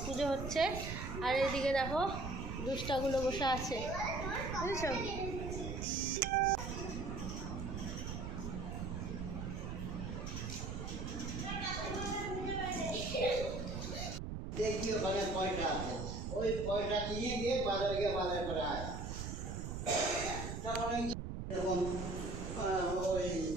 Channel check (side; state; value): right; noise; rumble, 5 dB below the sound